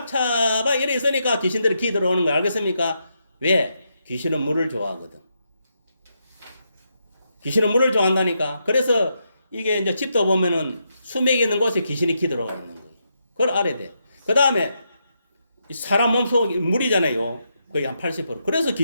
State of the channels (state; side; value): inverted; both; correlation -0.81